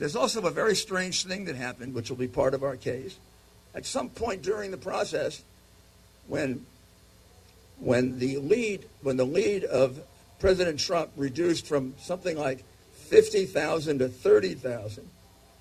also a very strange thing that happened, which will be part of our case. At some point during the process, when the lead of President Trump reduced from something like 50,000 to 30,000,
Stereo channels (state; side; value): identical; both; correlation 1.00